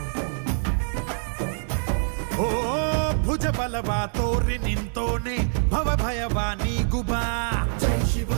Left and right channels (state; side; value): silent; left; digital silence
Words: ಓ ಭುಜ ಬಲವಾ ತೋರಿ ನಿಂತೋನೆ ಭವ ಭಯವಾ ನೀಗುಬಾ ಜೈ